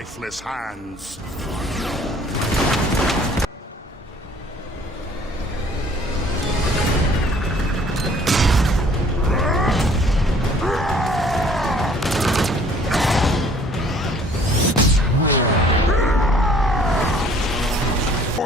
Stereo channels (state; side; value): normal; both; correlation 0.56